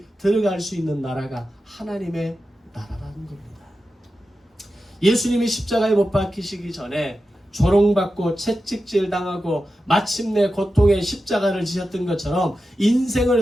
들어갈 수 있는 나라가 하나님의 나라라는 겁니다. 예수님이 십자가에 못 박히시기 전에 조롱받고 채찍질 당하고 마침내 고통의 십자가를 지셨던 것처럼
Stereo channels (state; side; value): normal; both; correlation 0.91